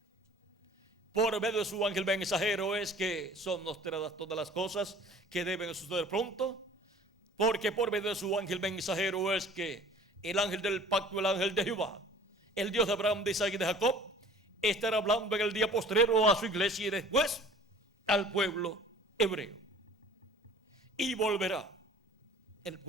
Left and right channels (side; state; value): both; normal; correlation 0.48